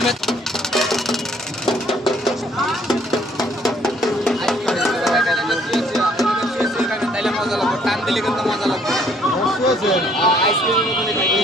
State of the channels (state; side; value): normal; both; correlation 0.63